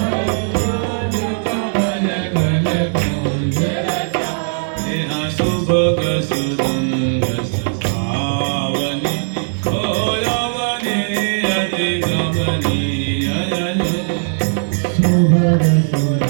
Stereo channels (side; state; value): left; silent; digital silence